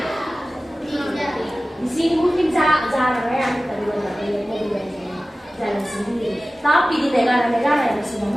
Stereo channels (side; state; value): both; normal; correlation 0.96